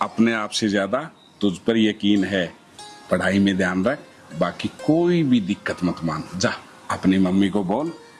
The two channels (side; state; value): both; identical; correlation 1.00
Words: अपने आप से ज्यादा तुझ पर यकीन है। पढ़ाई में ध्यान रख, बाकी कोई भी दिक्कत मत मान। जा अपनी मम्मी को बोल,